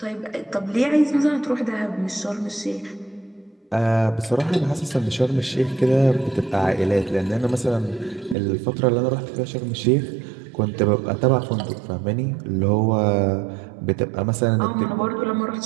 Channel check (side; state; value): left; drops out; at 8.3 s